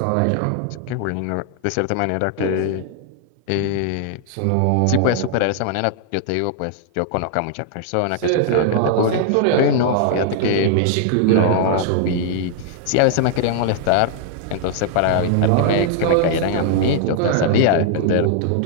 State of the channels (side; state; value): both; different; correlation -0.01